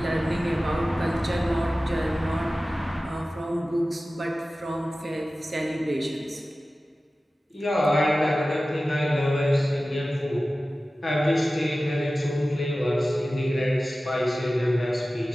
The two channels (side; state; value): both; normal; correlation 0.96